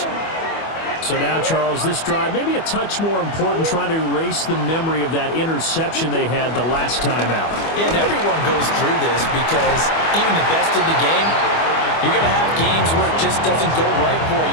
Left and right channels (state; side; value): late; right; 25 ms